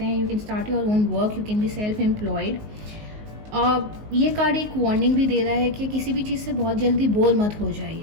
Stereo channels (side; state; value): left; late; 19 ms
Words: हैं. You can start your own work, you can be self employed. ये कार्ड एक वार्निंग भी दे रहा है कि किसी भी चीज़ से बहुत जल्दी बोर मत हो